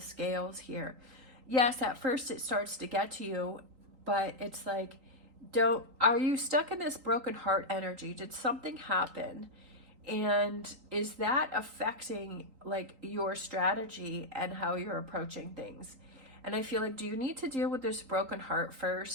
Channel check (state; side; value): late; left; 3.8 ms